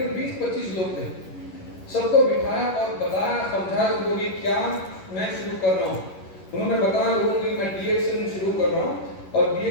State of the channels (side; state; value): right; late; 11 ms